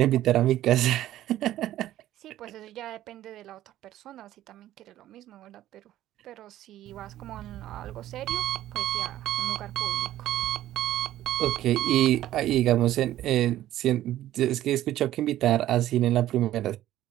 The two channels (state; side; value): quieter; left; 13.5 dB